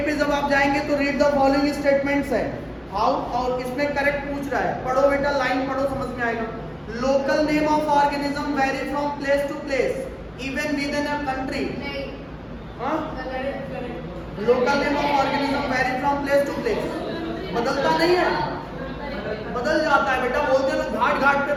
पे जब आप जाएंगे तो रीड द फॉलोइंग स्टेटमेंट्स है। हाउ, और इसमें करेक्ट पूछ रहा है। पढ़ो बेटा, लाइन पढ़ो, समझ में आएगा। Local name of organism vary from place to place even within a country. Local name of organism vary from place to place, बदलता नहीं है, बदल जाता है बेटा। बोलते हैं लोग घाट घाट पे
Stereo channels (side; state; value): both; identical; correlation 1.00